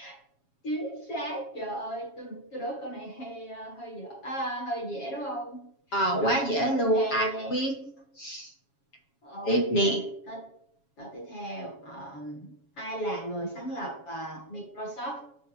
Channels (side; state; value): right; late; 7.2 ms